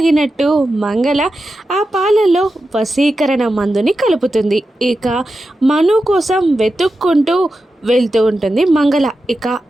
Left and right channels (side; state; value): both; normal; correlation 0.91